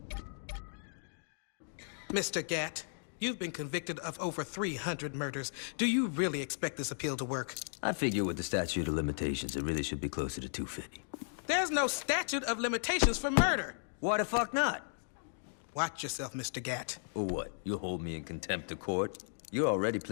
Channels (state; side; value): silent; right; digital silence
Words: Mr. Gatt, you've been convicted of over 300 murders. Do you really expect this appeal to work? I figure with the statute of limitations, it really should be closer to 250. There's no statute of limitations for murder. Why the fuck not? Watch yourself, Mr. Gatt. Or what? You'll hold me in contempt of court? You're already